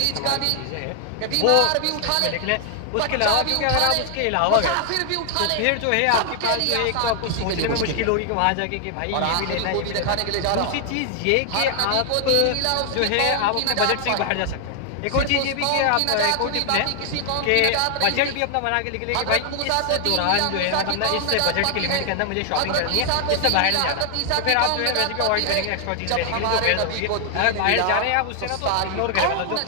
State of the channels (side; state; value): both; different; correlation 0.00